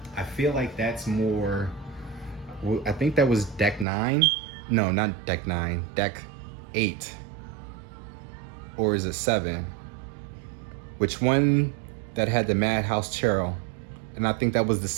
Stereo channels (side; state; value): left; drops out; at 3.9 s